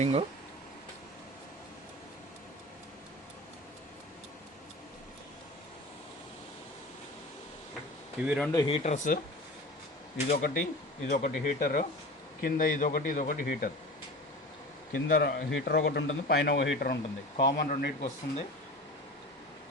ఇవి రెండు హీటర్స్, ఇదొకటి హీటర్, కింద ఇదొకటి హీటర్. కింద హీటర్ ఒకటి ఉంటుంది, పైన ఒక హీటర్ ఉంటుంది. కామన్ రెండింటికి వస్తుంది.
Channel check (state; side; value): normal; both; correlation 0.35